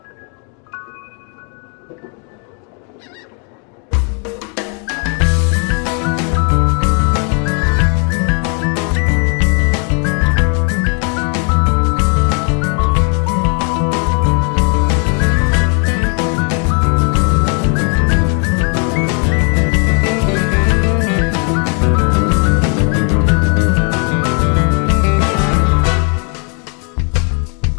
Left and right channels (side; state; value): right; quieter; 39.0 dB